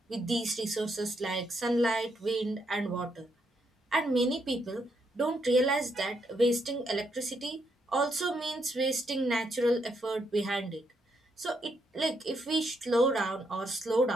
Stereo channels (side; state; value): both; normal; correlation 0.77